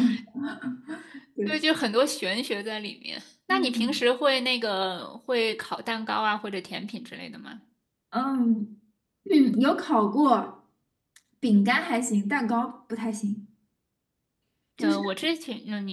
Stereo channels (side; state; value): both; identical; correlation 1.00